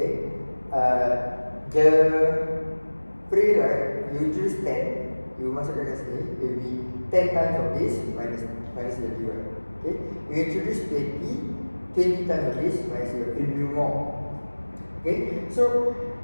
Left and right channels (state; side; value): inverted; both; correlation -1.00